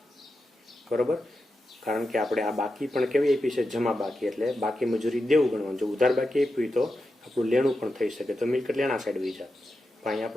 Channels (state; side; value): normal; both; correlation 0.89